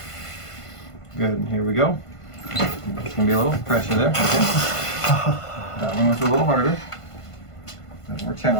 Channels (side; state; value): right; late; 1.5 ms